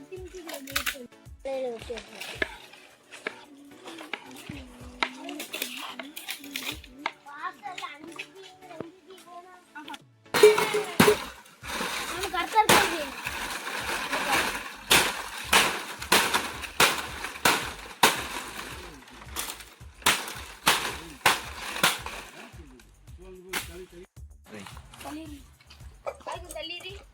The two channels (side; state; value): both; identical; correlation 1.00